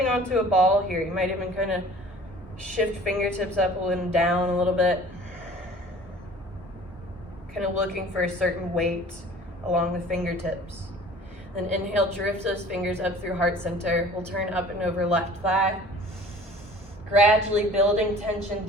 onto a ball here. You might even kind of shift fingertips up and down a little bit. Kind of looking for a certain weight along the fingertips. Then inhale, drift those fingers up through heart center. We'll turn up and over left thigh. Gradually building tension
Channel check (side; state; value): both; normal; correlation 0.47